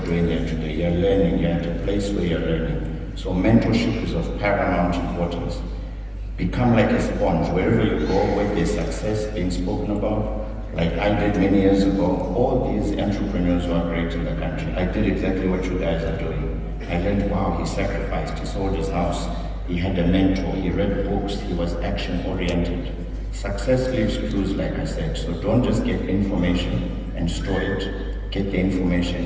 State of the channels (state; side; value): identical; both; correlation 1.00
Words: doing here today, you're learning, you're at a place where you're learning. So mentorship is of paramount importance. Become like a sponge. Wherever you go, where there's success being spoken about, like I did many years ago, all these entrepreneurs who are great in the country, I did exactly what you guys are doing. I learned, wow, he sacrificed, he sold his house, he had a mentor, he read books, he was action-oriented. Success leaves clues, like I said, so don't just get information and store it, get the